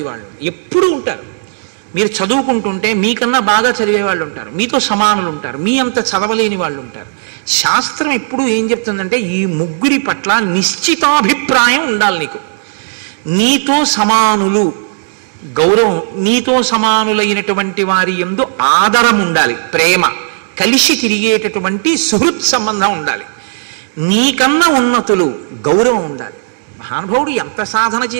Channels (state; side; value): silent; left; digital silence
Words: వాళ్ళు ఎప్పుడూ ఉంటారు. మీరు చదువుకుంటుంటే మీకన్నా బాగా చదివే వాళ్ళు ఉంటారు, మీతో సమానులు ఉంటారు, మీ అంత చదవలేని వాళ్ళు ఉంటారు. శాస్త్రం ఎప్పుడూ ఏం చెప్తుందంటే, ఈ 3 పట్ల నిశ్చితాభిప్రాయం ఉండాలి నీకు. నీతో సమానులు గౌరవం, నీతో సమానులైనటువంటి వారి యందు ఆదరం ఉండాలి, ప్రేమ, కలిసి తిరిగేటటువంటి సుహృత్ సంబంధం ఉండాలి. నీకన్నా ఉన్నతులు గౌరవం ఉండాలి. మహానుభావుడు ఎంత సాధన